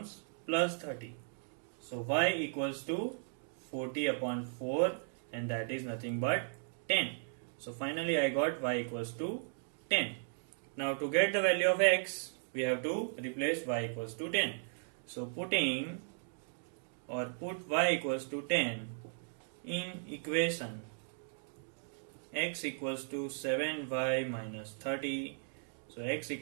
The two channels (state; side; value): silent; left; digital silence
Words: plus 30. So y equals to 40 upon 4, and that is nothing but 10. So finally I got y equals to 10. Now to get the value of x, we have to replace y equals to 10. So put y equals to 10 in equation x equals to 7y minus 30. So x